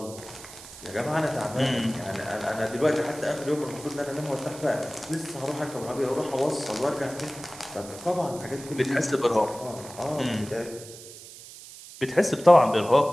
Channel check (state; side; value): noise; right; hiss, 16 dB below the sound